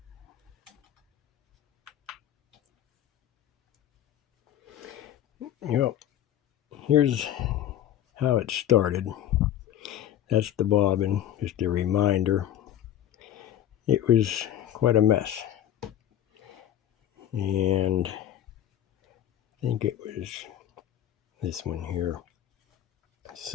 You know, here's how it started. That's the bobbin, just a reminder. It was quite a mess. And I think it was this one here.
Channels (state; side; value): quieter; right; 11.3 dB